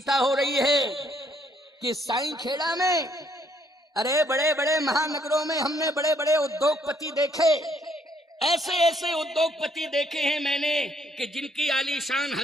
हो रही है कि साईंखेड़ा में, अरे बड़े बड़े महानगरों में हमने बड़े बड़े उद्योगपति देखे, ऐसे ऐसे उद्योगपति देखे हैं मैंने कि जिनकी आलीशान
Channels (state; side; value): normal; both; correlation 0.69